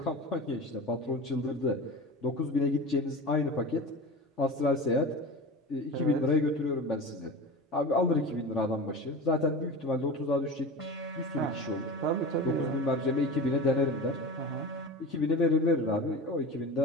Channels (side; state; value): both; normal; correlation 0.30